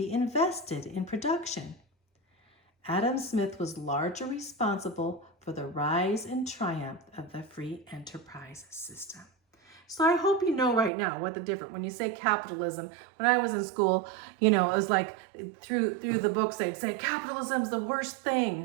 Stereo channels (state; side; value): drops out; left; at 10.9 s